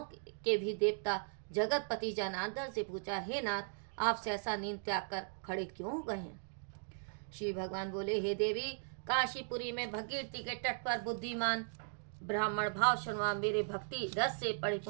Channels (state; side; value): silent; left; digital silence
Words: के भी देवता जगतपति जनार्दन से पूछा, हे नाथ, आप सहसा नींद त्याग कर खड़े क्यों हो गए हैं? श्री भगवान बोले, हे देवी, काशीपुरी में भगीरथी के तट पर बुद्धिमान ब्राह्मण भाव शर्मा मेरे भक्ति रस से